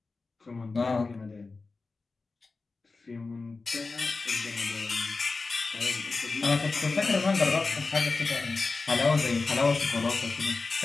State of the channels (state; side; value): quieter; right; 3.9 dB